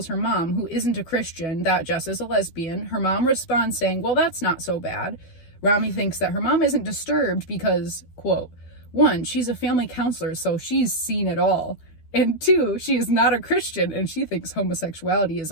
her mom, who isn't a Christian, that Jess is a lesbian. Her mom responds saying, well, that's not so bad. Rami thinks that her mom isn't disturbed because, quote, 1, she's a family counselor, so she's seen it all. And 2, she is not a Christian and she thinks homosexuality is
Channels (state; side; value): late; right; 12 ms